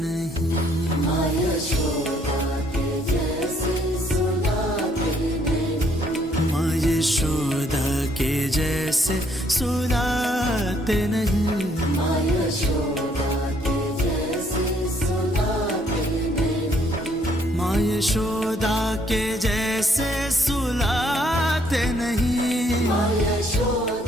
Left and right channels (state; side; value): normal; both; correlation 0.67